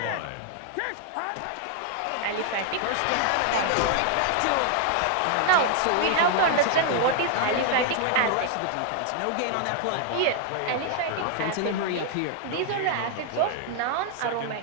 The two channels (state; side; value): different; both; correlation 0.00